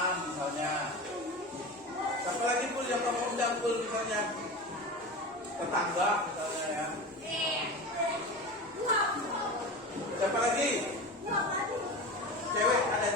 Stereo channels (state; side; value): normal; both; correlation 0.28